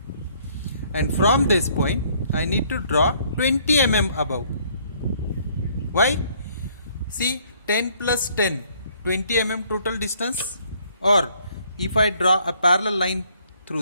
And from this point I need to draw 20 mm above. Why? See, 10 plus 10, 20 mm total distance. Or if I draw a parallel line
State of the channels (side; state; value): both; inverted; correlation -0.63